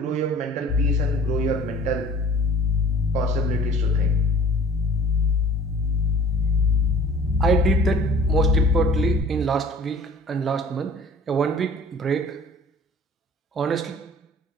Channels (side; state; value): both; normal; correlation 0.48